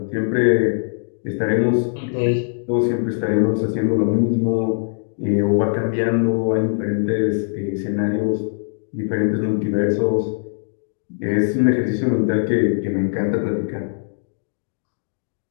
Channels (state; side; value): silent; right; digital silence